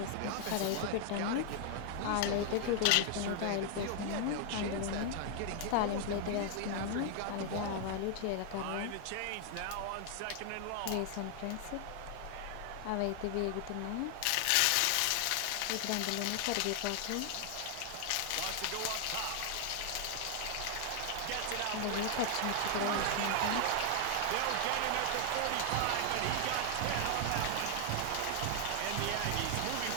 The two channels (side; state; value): both; different; correlation 0.00